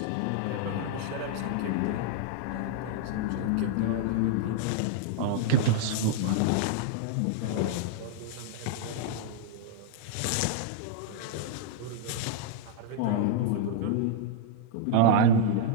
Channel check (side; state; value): both; different; correlation -0.01